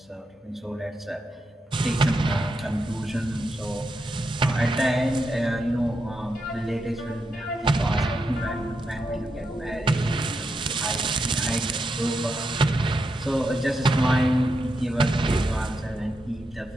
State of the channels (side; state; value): both; normal; correlation 0.84